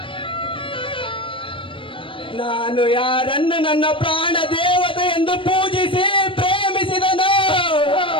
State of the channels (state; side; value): late; right; 0.25 ms